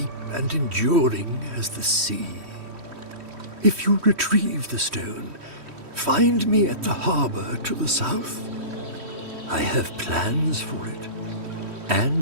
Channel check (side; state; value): left; late; 3.1 ms